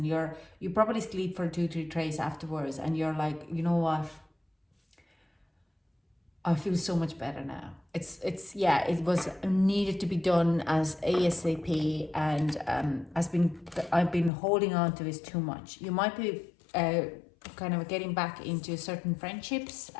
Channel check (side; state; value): right; drops out; at 14.3 s